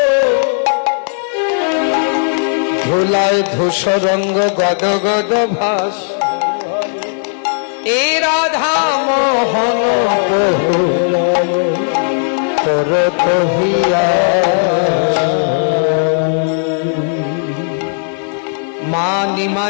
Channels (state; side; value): silent; right; 64 dB below the other